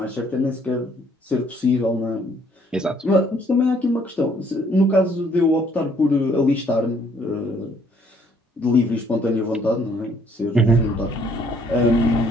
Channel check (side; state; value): both; normal; correlation 0.64